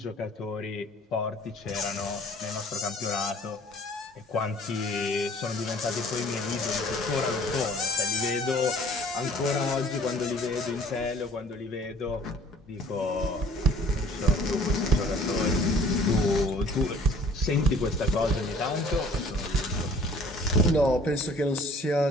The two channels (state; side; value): normal; both; correlation 0.52